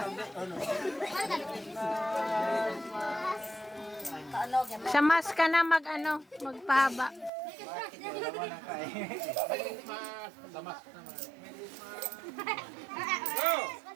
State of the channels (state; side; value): drops out; left; at 7.3 s